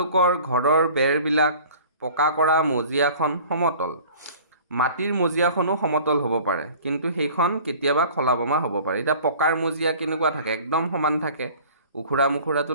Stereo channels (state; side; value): inverted; both; correlation -0.46